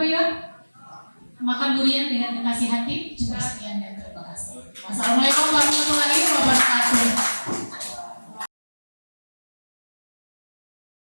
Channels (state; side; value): inverted; both; correlation -1.00